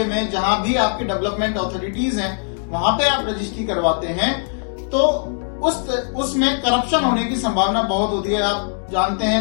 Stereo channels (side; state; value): right; silent; digital silence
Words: में, जहां भी आपके डेवलपमेंट अथॉरिटीज हैं, वहां पे आप रजिस्ट्री करवाते हैं, तो उसमें करप्शन होने की संभावना बहुत होती है। आप जानते